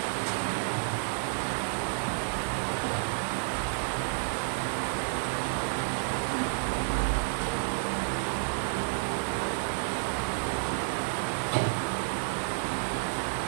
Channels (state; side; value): silent; left; digital silence